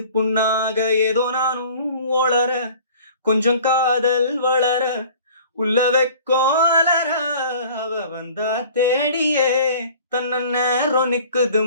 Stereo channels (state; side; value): inverted; both; correlation -0.48